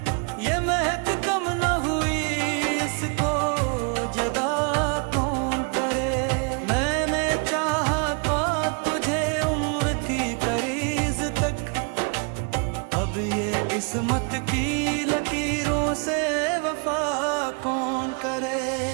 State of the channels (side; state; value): left; quieter; 36.0 dB